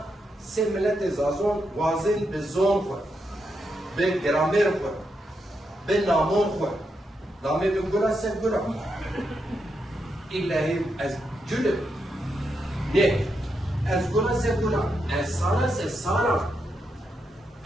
se millet zazon vazin be zon ko, be gramer ko, be namon ko, namı be gura se gura. İllahi az cülüp, ne? Az gura se gura, az sara se sara,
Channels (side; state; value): both; normal; correlation 0.83